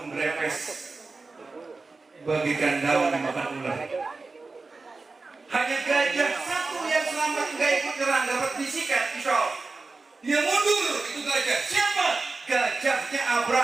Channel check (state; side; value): quieter; left; 3.8 dB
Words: berepes bagikan daun dimakan ular. Hanya gajah satu yang selamat, nggak ikut nyerang, dapat bisikan pisau. Dia mundur, itu gajah. Siapa? Gajahnya